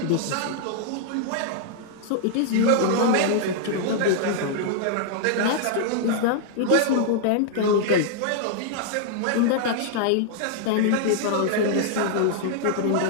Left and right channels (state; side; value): different; both; correlation -0.01